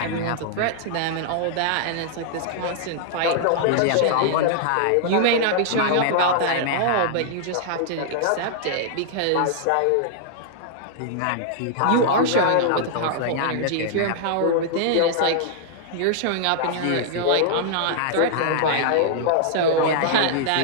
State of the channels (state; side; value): different; both; correlation -0.01